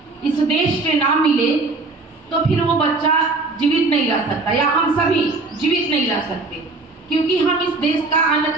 इस देश से ना मिले तो फिर वो बच्चा जीवित नहीं रह सकता, या हम सभी जीवित नहीं रह सकते, क्योंकि हम इस देश का अन्न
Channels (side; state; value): left; quieter; 3.5 dB